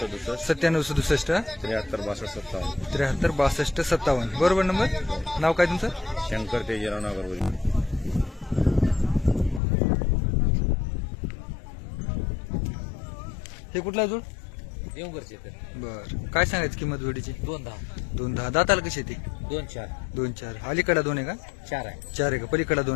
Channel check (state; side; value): drops out; right; at 9.6 s